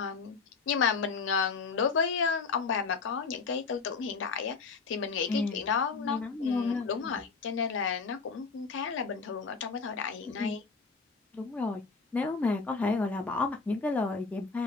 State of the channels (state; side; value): quieter; right; 4.8 dB